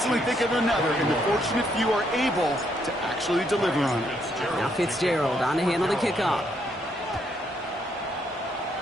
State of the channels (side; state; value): both; normal; correlation 0.74